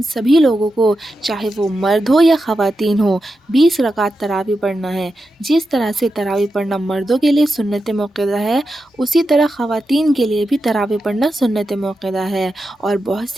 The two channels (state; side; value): normal; both; correlation 0.89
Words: सभी लोगों को, चाहे वो मर्द हो या ख़वातीन हो, 20 रकात तरावीह पढ़ना है। जिस तरह से तरावीह पढ़ना मर्दों के लिए सुन्नत मुअक्कदा है, उसी तरह ख़वातीन के लिए भी तरावीह पढ़ना सुन्नत मुअक्कदा है। और बहुत